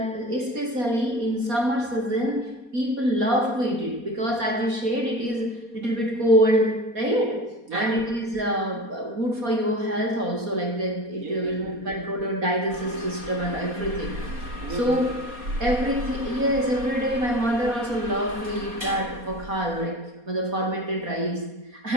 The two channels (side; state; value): left; late; 4.2 ms